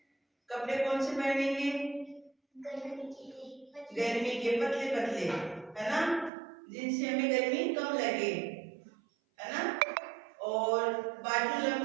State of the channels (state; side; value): drops out; left; at 6.3 s